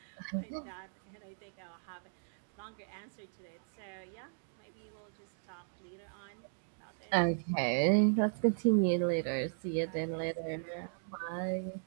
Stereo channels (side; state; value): left; silent; digital silence